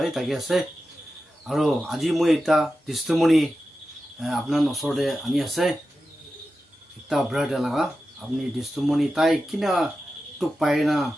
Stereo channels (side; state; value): both; normal; correlation 0.92